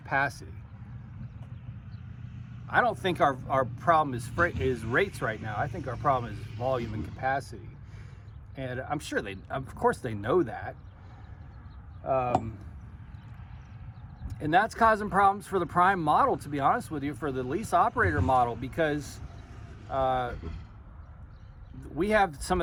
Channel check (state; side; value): identical; both; correlation 1.00